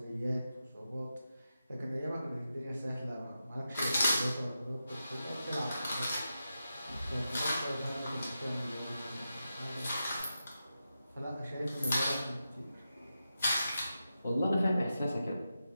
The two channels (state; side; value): inverted; both; correlation -0.89